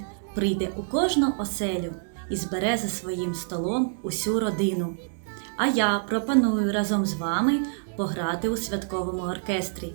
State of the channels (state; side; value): silent; left; digital silence